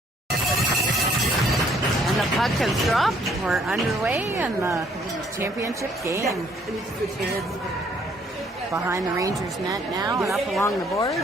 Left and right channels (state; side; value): normal; both; correlation 0.64